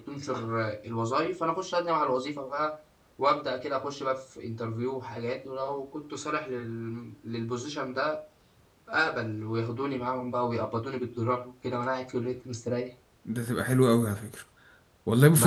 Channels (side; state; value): both; identical; correlation 1.00